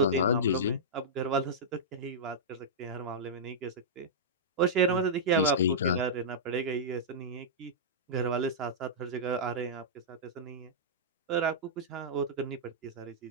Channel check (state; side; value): normal; both; correlation -0.12